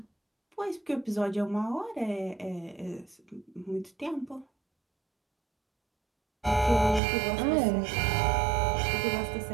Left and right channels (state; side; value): drops out; left; at 7.0 s